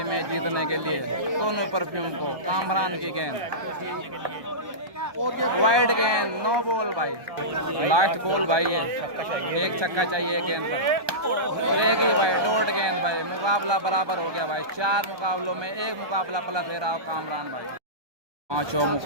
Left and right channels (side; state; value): left; late; 1.2 ms